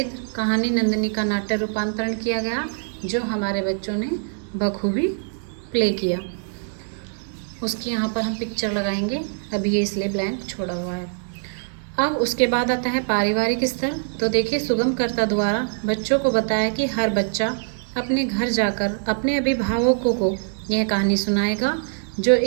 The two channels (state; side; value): silent; left; digital silence